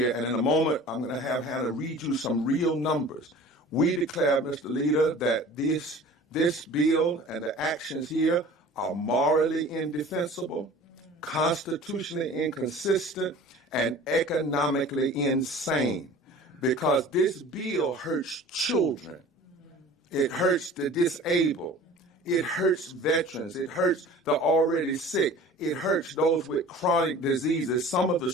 And in a moment, I'm going to have Hannah read you some real numbers. We declare, Mr. Leader, that this bill and the actions here are morally indefensible, constitutionally inconsistent, and economically insane, because this bill hurts children. It hurts the disabled. It hurts veterans. It hurts the already sick. It hurts those with chronic diseases, some of the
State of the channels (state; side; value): normal; both; correlation 0.43